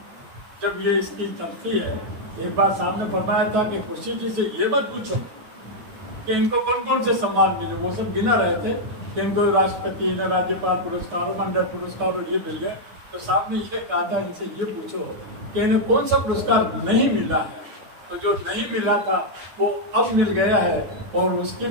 जब ये इसकी चलती है, एक बार साहब ने फरमाया था कि खुर्शीद जी से ये मत पूछो कि इनको कौन कौन से सम्मान मिले, वो सब गिना रहे थे कि इनको राष्ट्रपति ने राज्यपाल पुरस्कार और मंडल पुरस्कार और ये मिल गए। तो साहब ने ये कहा था इनसे ये पूछो कि इन्हें कौन सा पुरस्कार नहीं मिला है। तो जो नहीं मिला था वो अब मिल गया है और उसकी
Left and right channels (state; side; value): late; left; 9.5 ms